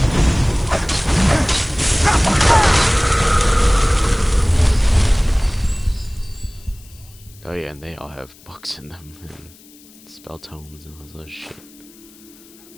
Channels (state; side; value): noise; left; hiss, 25 dB below the sound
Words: Oh yeah, and they all have books in them, and spell tomes and all this other shit.